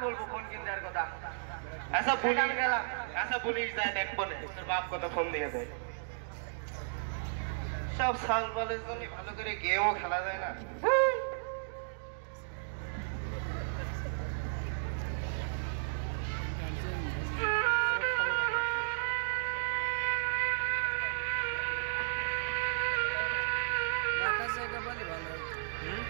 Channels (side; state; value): left; silent; digital silence